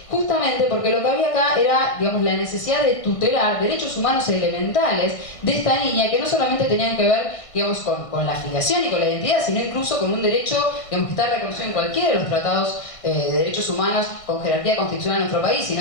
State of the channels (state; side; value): late; right; 1.6 ms